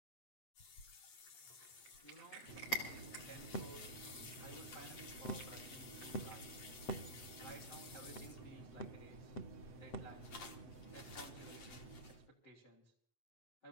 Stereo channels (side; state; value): right; late; 8.6 ms